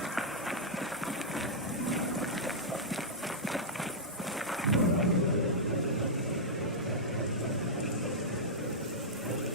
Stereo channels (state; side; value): normal; both; correlation -0.09